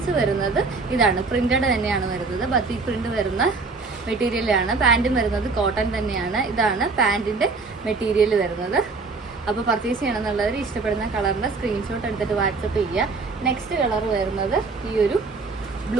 വരുന്നത് ഇതാണ്, പ്രിന്റഡ് തന്നെയാണ് വരുന്നത്. ബത്തിക് പ്രിന്റ് വരുന്ന മെറ്റീരിയലാണ്. പാൻറ്റും വരുന്നത് കോട്ടൺ തന്നെയാണ്. ഇതാണ് പാൻറ്റിൻ്റെ മെറ്റീരിയൽ വരുന്നത്. അപ്പോൾ പർച്ചേസ് ചെയ്യണം എന്നുള്ളവർ ഇഷ്ടപ്പെടുന്ന കളറിൻ്റെ സ്ക്രീൻഷോട്ട് എടുത്തിട്ട് വാട്സപ്പ് ചെയ്യുക. നെക്സ്റ്റ് കളർ വരുന്നത് ഈ ഒരു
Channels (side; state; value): left; quieter; 4.1 dB